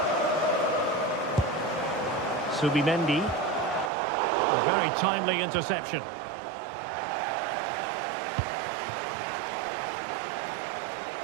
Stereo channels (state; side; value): drops out; left; at 3.9 s